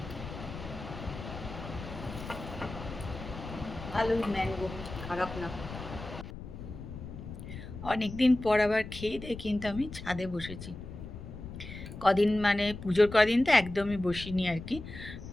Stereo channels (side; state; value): left; noise; rumble, 11 dB below the sound